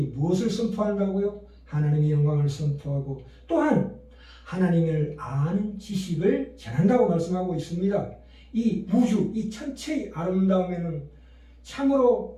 무엇을 선포한다고요? 하나님의 영광을 선포하고 또한 하나님을 아는 지식을 전한다고 말씀하고 있습니다. 이 우주, 이 천체의 아름다움에는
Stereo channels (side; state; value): both; identical; correlation 1.00